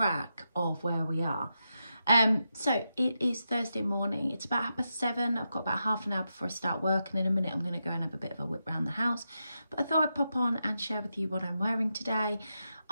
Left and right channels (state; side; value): inverted; both; correlation -0.87